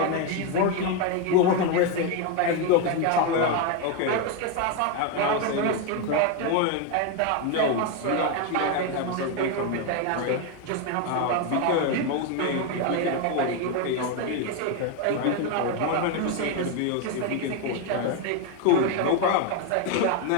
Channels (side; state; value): both; different; correlation 0.02